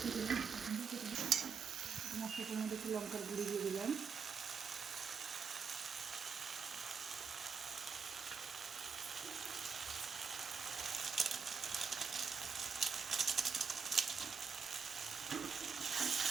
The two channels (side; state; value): left; quieter; 5.9 dB